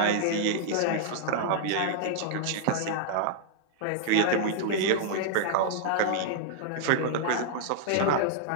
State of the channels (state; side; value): different; both; correlation -0.01